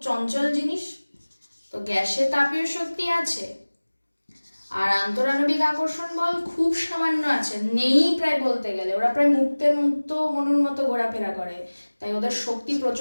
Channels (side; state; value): both; inverted; correlation -1.00